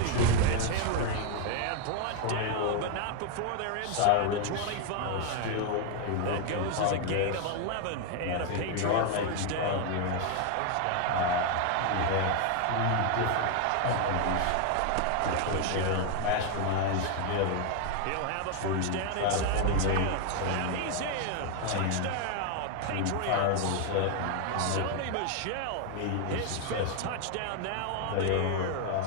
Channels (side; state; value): both; different; correlation 0.00